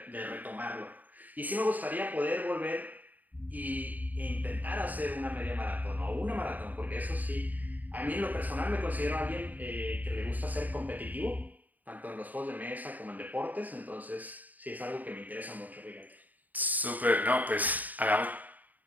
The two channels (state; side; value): late; left; 0.081 ms